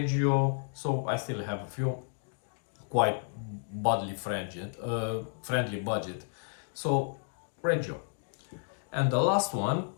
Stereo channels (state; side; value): silent; right; digital silence